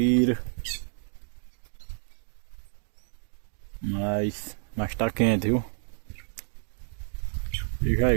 Mas tá quente, viu? Veja aí,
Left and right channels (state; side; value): silent; left; digital silence